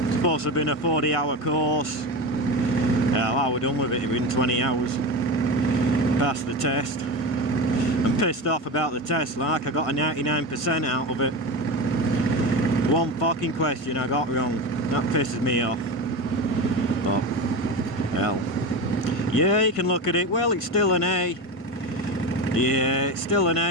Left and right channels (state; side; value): late; right; 1.5 ms